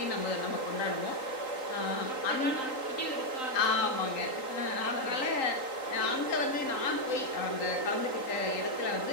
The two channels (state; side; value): late; right; 3.8 ms